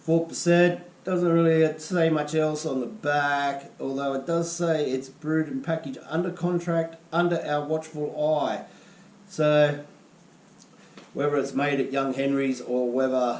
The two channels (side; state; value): both; identical; correlation 1.00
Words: Doesn't really say much else on the back, although it does say it's brewed and packaged under contract, under our watchful eye. So, whether it's made at Young Henry's or